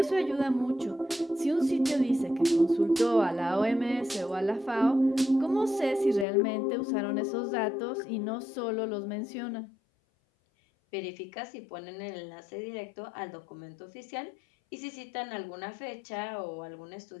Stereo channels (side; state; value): right; drops out; at 6.2 s